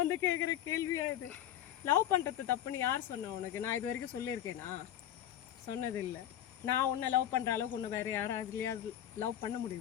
வந்து கேட்குற கேள்வியா இது? லவ் பண்ணுறது தப்புன்னு யார் சொன்னா உனக்கு? நான் இது வரைக்கும் சொல்லியிருக்கேனா? சொன்னதில்லை. நான் உன்னை லவ் பண்ணுற அளவுக்கு உன்னை வேறு யாராவதுலையாவது லவ் பண்ண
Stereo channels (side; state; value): right; quieter; 11.4 dB